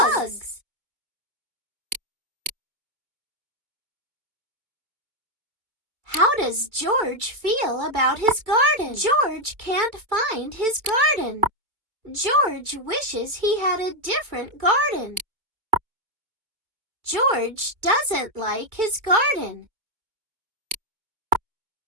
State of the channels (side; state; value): left; late; 2.2 ms